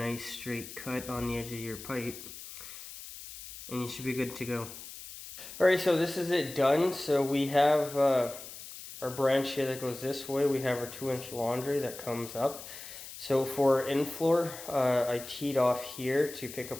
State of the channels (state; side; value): noise; left; hiss, 13 dB below the sound